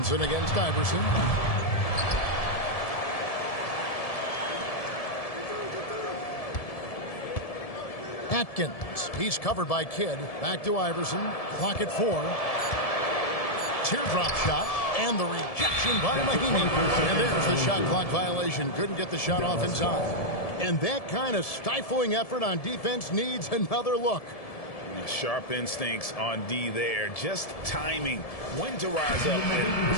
against Iverson. Atkins. He's covered by Kidd. Back to Iverson. Clock at 4. Teardrop shot. And the rejection by Mahimi. And there's the shot clock violation. Couldn't get the shot off in time. And that kind of stifling effort on defense needs another look. Sharp instincts on D there. Just timing. When to rise up and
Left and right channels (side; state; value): right; late; 1.7 ms